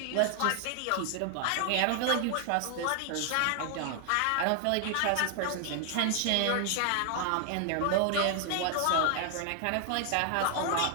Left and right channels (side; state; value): both; different; correlation 0.00